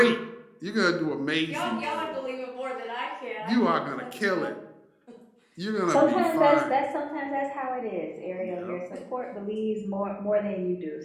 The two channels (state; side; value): identical; both; correlation 1.00